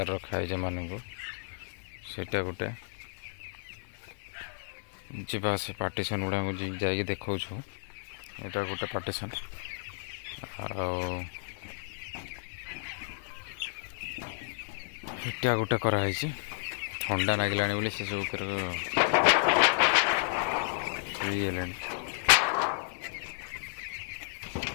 रखाई मानक सेटा गोटे जीवा से पार्टीशन गुड़ा जाकि देखा यहाँ गोटे पार्टीशन आटा गोटे कराई ठंडा लगिला बोली से सब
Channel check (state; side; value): silent; right; digital silence